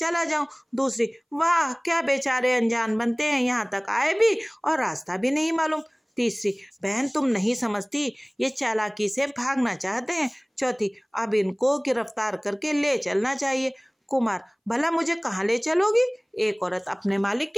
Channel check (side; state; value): both; identical; correlation 1.00